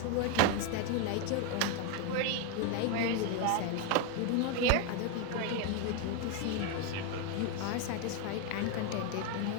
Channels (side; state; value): both; different; correlation 0.01